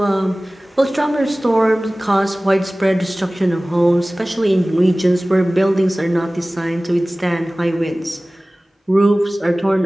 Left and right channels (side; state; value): both; normal; correlation 0.98